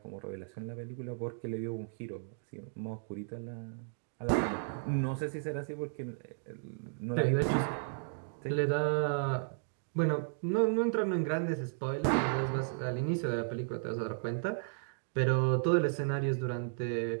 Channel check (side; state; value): left; silent; digital silence